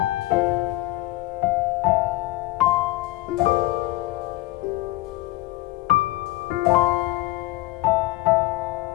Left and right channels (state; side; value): quieter; right; 18.7 dB